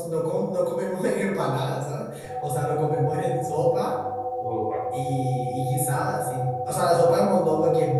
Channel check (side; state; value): both; identical; correlation 1.00